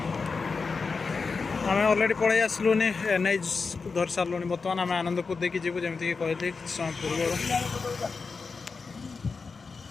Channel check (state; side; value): quieter; right; 4.7 dB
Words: आम अलरेडी पलि आसलुनि एनएच धरी सारूँ बर्तमान आम आनंदपुर देखिए जीव जमीक कहली समय पूर्व